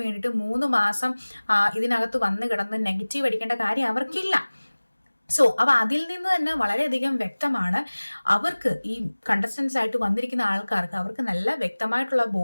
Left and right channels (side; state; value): both; inverted; correlation -1.00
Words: വേണ്ടിയിട്ട് 3 മാസം ഇതിനകത്ത് വന്ന് കിടന്ന് നെഗറ്റീവ് അടിക്കേണ്ട കാര്യം അവർക്കില്ല. സോ അപ്പോൾ അതിൽ നിന്ന് തന്നെ വളരെയധികം വ്യക്തമാണ്, അവർക്ക് ഈ കണ്ടസ്റ്റൻസ് ആയിട്ട് വന്നിരിക്കുന്ന ആൾക്കാർക്ക് അവർക്ക് നല്ല വ്യക്തമായിട്ടുള്ള